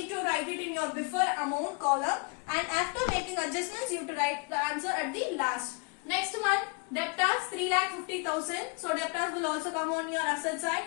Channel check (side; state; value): right; quieter; 31.7 dB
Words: to write it in your before amount column, and after making adjustments you have to write the answer at the last. Next one, debtors 3,50,000. So debtors will also come on your asset side.